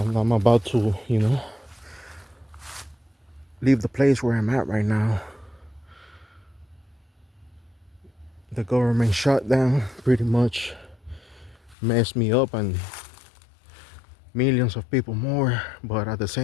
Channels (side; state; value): right; drops out; at 11.8 s